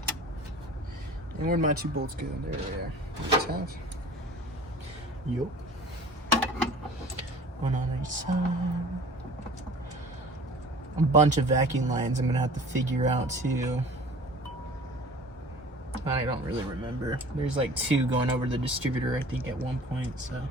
And where'd my two bolts go? There they are. Just have. Yep. One on each side. A bunch of vacuum lines I'm gonna have to figure out too. I don't really remember. There's like two going over the distributor, I think, at one point, so.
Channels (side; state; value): both; normal; correlation 0.44